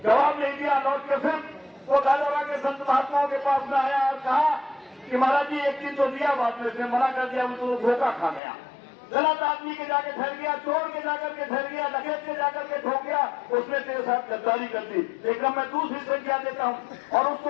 जवाब नहीं दिया। लौट के फिर वो गाजरा के संत महात्माओं के पास में आया और कहा कि महाराज जी एक चीज तो दिया, बाद में इसने मना कर दिया, वो तो धोखा खा गया। गलत आदमी के जाके ठहर गया, चोर के जाकर के ठहर गया, डकैत के जाकर के ठोक गया, उसने तेरे साथ गद्दारी कर दी। लेकिन मैं दूसरी संख्या देता हूँ और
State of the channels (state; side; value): drops out; right; at 8.4 s